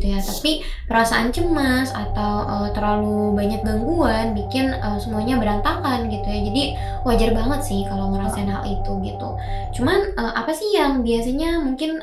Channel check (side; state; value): both; identical; correlation 1.00